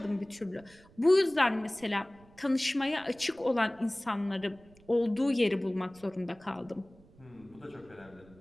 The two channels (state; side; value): noise; right; rumble, 26 dB below the sound